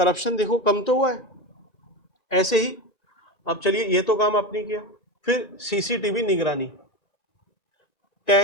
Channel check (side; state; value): right; late; 1.9 ms